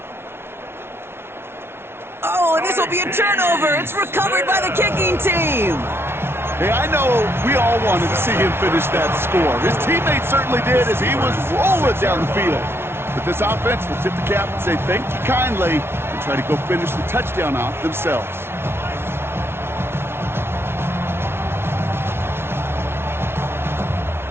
Oh, and this will be a turnover. It's recovered by the kicking team. Hey, I know we all wanted to see him finish that score. His teammates certainly did as he was rolling down the field. But this offense will tip the cap and say thank you kindly and try to go finish the touchdown off themselves.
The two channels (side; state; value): left; late; 0.12 ms